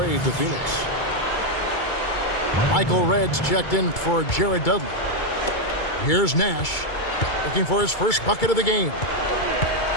to Phoenix. Michael Reds checked in for Jared Dudley. Here's Nash looking for his first bucket of the game.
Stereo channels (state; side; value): late; right; 2.3 ms